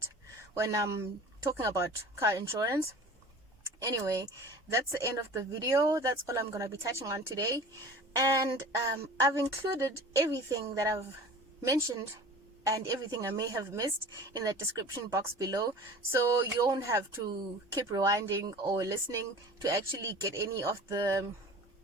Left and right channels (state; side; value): normal; both; correlation 0.40